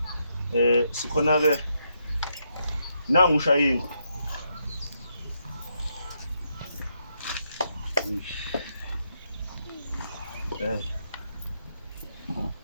Sikhona ke nangu ushayingo.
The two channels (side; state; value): both; inverted; correlation -0.79